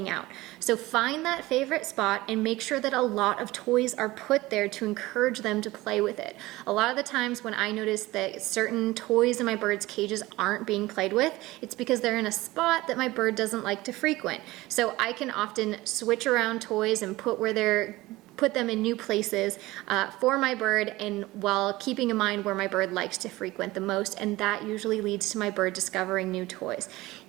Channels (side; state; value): left; quieter; 19.1 dB